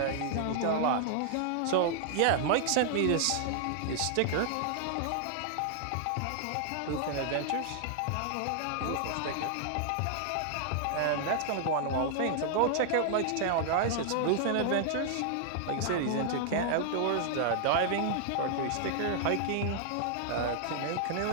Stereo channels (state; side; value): different; both; correlation -0.01